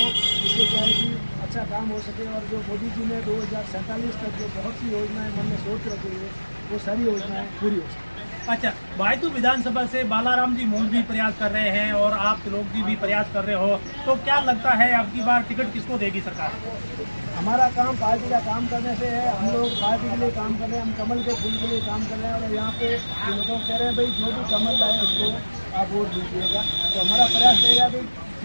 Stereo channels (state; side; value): inverted; both; correlation -1.00